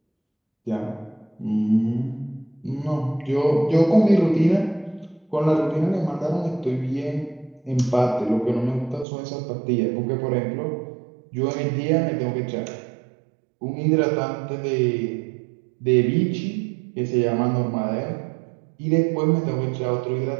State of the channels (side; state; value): left; drops out; at 9.1 s